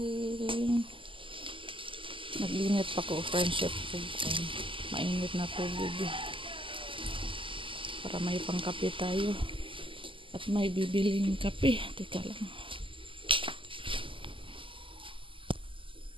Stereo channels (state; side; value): late; left; 0.25 ms